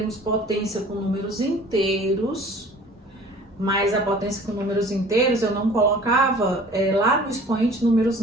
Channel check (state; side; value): normal; both; correlation 0.47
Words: potência com números inteiros, mas a potência com números inteiros eu não colocava lá no expoente números